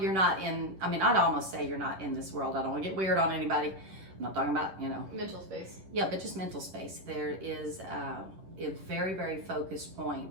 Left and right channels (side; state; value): left; late; 10 ms